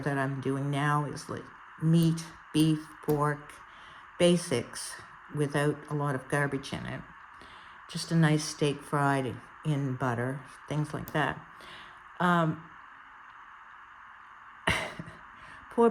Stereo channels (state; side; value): identical; both; correlation 1.00